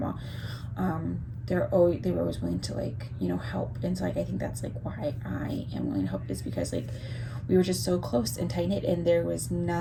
They were always willing to, like, help. And so, like, I think that's like why I am willing to help, is because, like, we were just so close and tight knit, and there was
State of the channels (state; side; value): identical; both; correlation 1.00